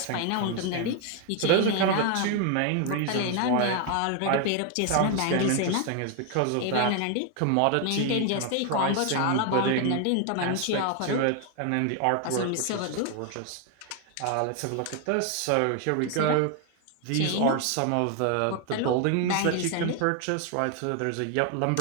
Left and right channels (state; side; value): different; both; correlation 0.01